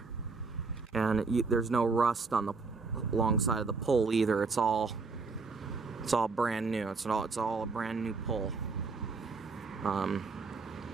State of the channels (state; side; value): quieter; left; 4.4 dB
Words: and there's no rust on the long side of the pole either. It's all brand new. It's all a brand new pole.